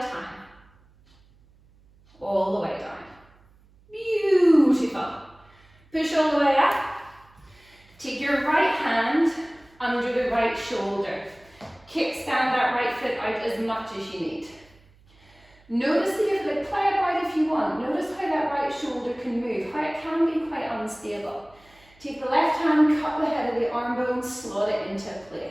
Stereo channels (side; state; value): right; noise; hum, 29 dB below the sound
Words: All the way down. Beautiful. Push all the way up. Take your right hand under the right shoulder. Kickstand that right foot out as much as you need. Notice the foot, play it right if you want. Notice how that right shoulder can move, how it can be quite unstable. Take the left hand, cup the head of the arm bone, slot it into